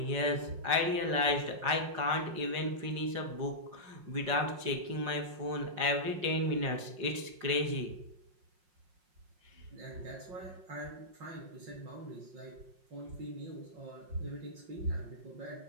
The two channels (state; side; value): late; left; 5.5 ms